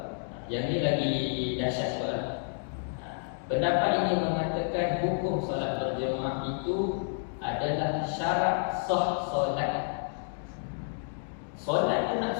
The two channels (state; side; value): silent; right; digital silence